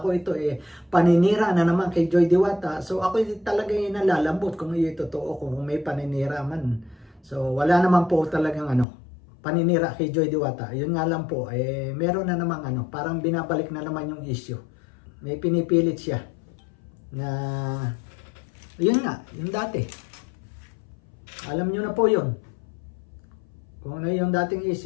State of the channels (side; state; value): right; drops out; at 8.8 s